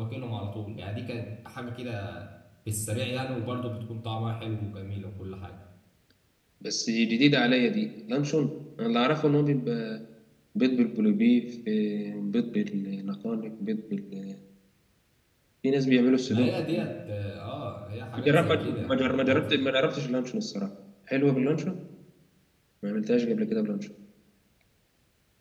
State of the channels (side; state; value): both; identical; correlation 1.00